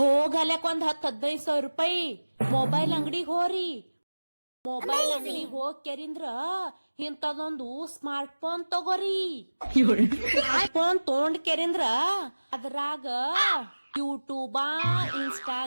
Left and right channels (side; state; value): both; inverted; correlation -1.00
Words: ಒಂದ್ 10-15 ರೂಪಾಯಿ ಮೊಬೈಲ್ ಅಂಗಡಿಗೆ ಹೋರಿ. ಮೊಬೈಲ್ ಅಂಗಡಿಗೆ ಹೋಗ್ ಕೆರಿಂದ್ರ ಇಂತದೊಂದು ಸ್ಮಾರ್ಟ್ ಫೋನ್ ತಗೋರಿ. ಫೋನ್ ತೊಗೊಂಡ್ ಕೆರಿಂದ್ರ ಅದ್ರಾಗ ಯೂಟ್ಯೂಬ,